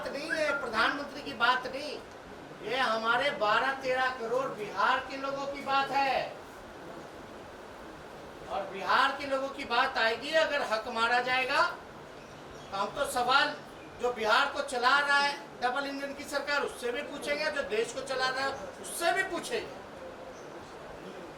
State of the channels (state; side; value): identical; both; correlation 1.00